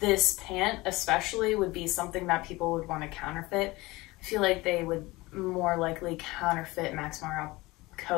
pant especially would be something that people would want to counterfeit. I feel like they would more likely counterfeit Max Mara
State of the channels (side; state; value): right; quieter; 21.2 dB